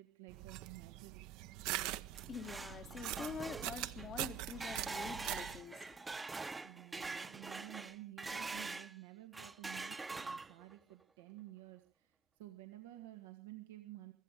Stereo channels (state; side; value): quieter; left; 4.9 dB